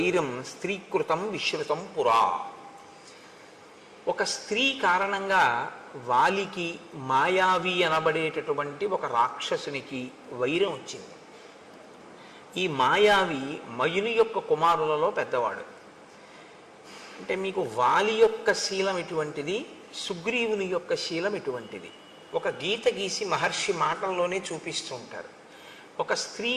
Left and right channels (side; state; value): both; identical; correlation 1.00